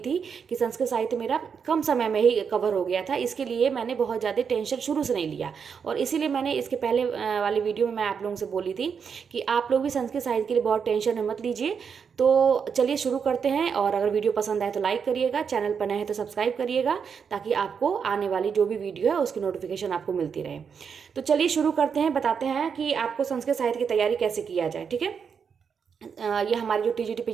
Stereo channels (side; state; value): left; quieter; 6.6 dB